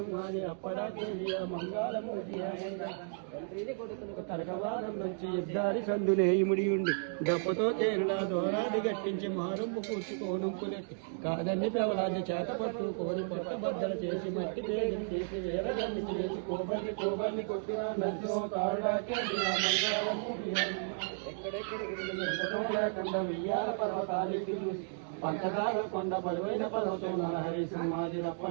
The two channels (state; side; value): silent; left; digital silence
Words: అప్పడాకే మంగాళము తండ్రిని కొడుకులకు తరగవాదం నుంచి యుద్ధాది సందునే ఇముడి ఉండి డబ్బుతో తేరులా దోరాది గట్టించి మారుంపు కూర్చుకోనుంపులెట్టి కాదని పెవరాన్ని చేతపట్టు కోరి పట్ట బద్దలు చేసి మట్టి పేరుని చేసి వేరగాన్ని చేసి కోబర్ని కొట్టిన నచ్చో తారుడాకే మంగాళము ఎక్కడెక్కడికి లేకుండా వియ్యాల పర్వతాలకి చూసి పంచదార కొండ బరువైన పర్వతం నరహరి సింహాది